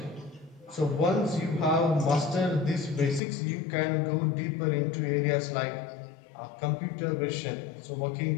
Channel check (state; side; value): drops out; right; at 3.2 s